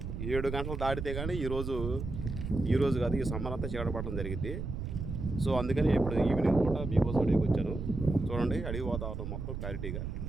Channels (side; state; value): right; noise; rumble, 5 dB below the sound